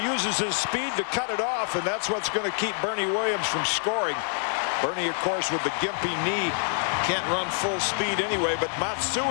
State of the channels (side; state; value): right; silent; 61 dB below the other